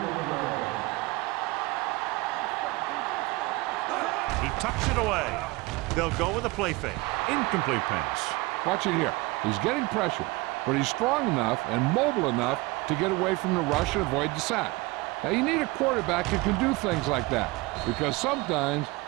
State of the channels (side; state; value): left; quieter; 22.6 dB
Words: stop, D. Big stop. Let's go. He tucks it away. They'll go with a play fake. Incomplete pass. Watch it here. He's getting pressure, but he's strong enough and mobile enough to get away from the rush and avoid the sack. Now, you need a quarterback who can do things like that, because sometimes